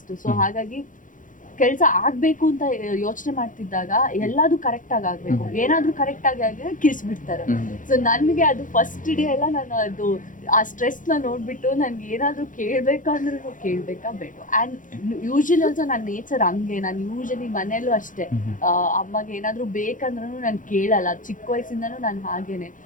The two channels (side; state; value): right; late; 0.38 ms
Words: ಸೊ ಹಾಗಾಗಿ ಕೆಲಸ ಆಗ್ಬೇಕು ಅಂತ ಯೋಚನೆ ಮಾಡ್ತಿದ್ದಾಗ ಎಲ್ಲಾದು ಕರೆಕ್ಟ್ ಆಗಿ ಆಗ್ಬೇಕು, ಏನಾದ್ರೂ ಕರೆಕ್ಟ್ ಆಗಿ ಆಗಿದ್ರೆ ಕಿಸ್ಬಿಡ್ತಾರೆ. ಸೊ ನನಗೆ ಅದು ಫಸ್ಟ್ ಡೇ ಎಲ್ಲ ನಾನು ಅದು ಆ ಸ್ಟ್ರೆಸ್ ನ ನೋಡ್ಬಿಟ್ಟು ನನ್ಗೆ ಏನಾದ್ರೂ ಕೇಳ್ಬೇಕಂದ್ರೂ ಕೇಳ್ಬೇಕಾ ಬೇಡ. ಅಂಡ್ ಯೂಶಲಿ ಆಲ್ಸೋ ನನ್ನ ನೇಚರ್ ಹಂಗೆ. ನಾನು ಯೂಶಲಿ ಮನೇಲೂ ಅಷ್ಟೇ, ಅಮ್ಮಗೆ ಏನಾದ್ರೂ ಬೇಕಂದ್ರೂ ನಾನು ಕೇಳಲ್ಲ. ಚಿಕ್ಕ ವಯಸ್ಸಿಂದನೂ ನಾನು ಹಾಗೇನೆ,